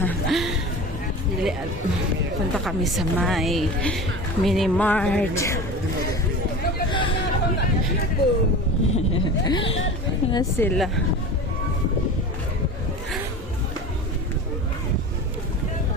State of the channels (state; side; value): normal; both; correlation 0.33